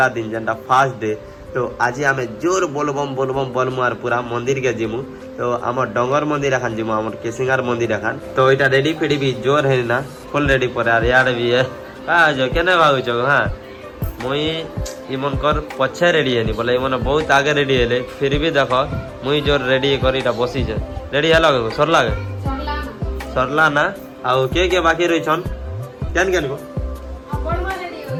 दिन जेनटा फास्ट डे। तो आज आम जोर बोलबम बोलबम बोलमु आर पूरा मंदिर के जिमु। तो आम डंगर मंदिर एखान जिमु आम केसिंगार मंदिर एखान। तो इटा रेडी फेडी भी जोर है ना फुल रेडी पर यार यार भी है जो केने भागुछ। हाँ मुई इमन कर पछे रेडी है बोले इमन बहुत आगे रेडी है फिर भी देखो मुई जोर रेडी कर इटा बसी छे। रेडी है लगे सरला सरला ना आउ के बाकी रही छन केन केन को।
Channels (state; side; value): identical; both; correlation 1.00